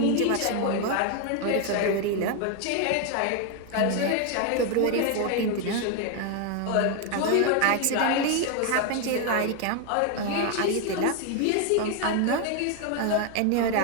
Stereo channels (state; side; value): different; both; correlation 0.01